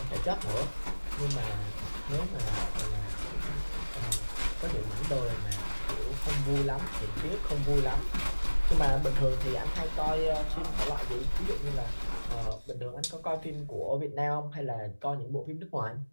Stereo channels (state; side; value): inverted; both; correlation -1.00